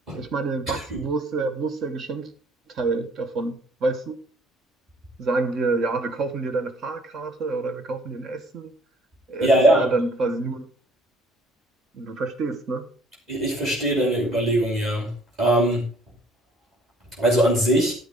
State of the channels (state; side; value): normal; both; correlation 0.58